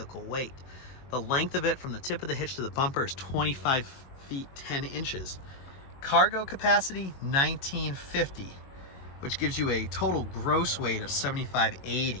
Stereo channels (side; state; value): right; late; 22 ms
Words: weight. The length of it from the tip of the hitch to the bumper is 25 feet 10 inches. Cargo capacity, 1950, which gives you a total gross weight of